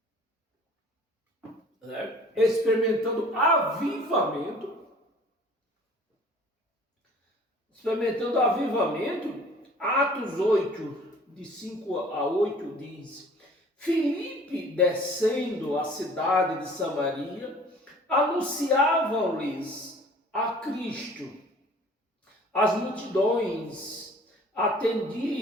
né? Experimentando avivamento. Atos 8, de 5 a 8 diz: Filipe, descendo a cidade de Samaria, anunciavam-lhes a Cristo. As multidões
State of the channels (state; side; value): normal; both; correlation 0.50